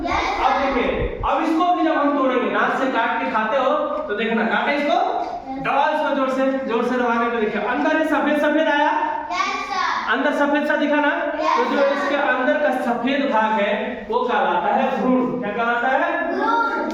अब देखिए, अब इसको भी जब हम तोड़ेंगे, दांत से काट के खाते हो तो देखना, काटे इसको, दबा इसको जोर से दबाने पे देखिए अंदर सफेद सफेद आया, अंदर सफेद सा दिखा ना। तो जो इसके अंदर का सफेद भाग है वो कहलाता है भ्रूण। क्या कहलाता है?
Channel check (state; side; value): identical; both; correlation 1.00